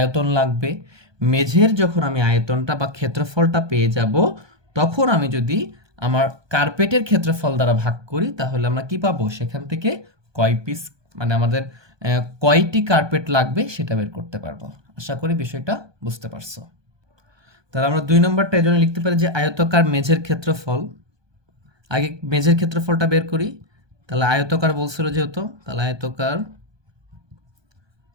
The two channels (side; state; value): left; late; 1.2 ms